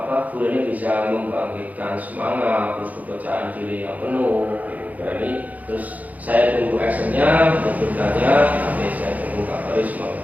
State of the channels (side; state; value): left; late; 0.077 ms